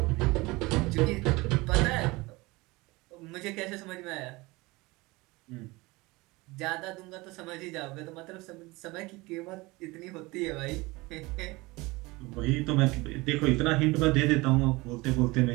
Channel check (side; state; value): left; quieter; 22.7 dB